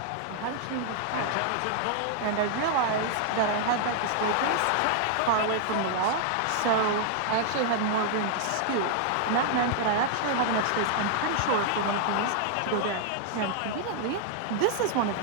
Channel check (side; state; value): both; different; correlation -0.01